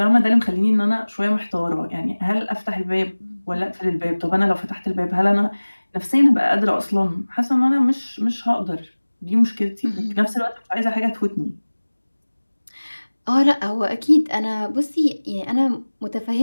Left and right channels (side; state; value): both; inverted; correlation -1.00